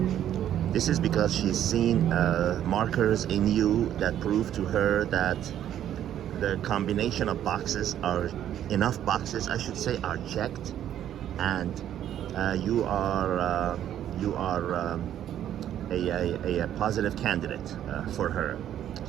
This is because she's seen markers in you that prove to her that the combination of boxes are enough boxes, I should say, are checked, and you are a positive candidate for her.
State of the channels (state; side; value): quieter; left; 10.9 dB